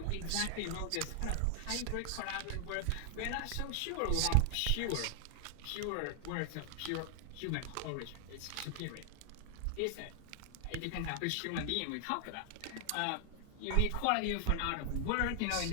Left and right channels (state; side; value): different; both; correlation 0.00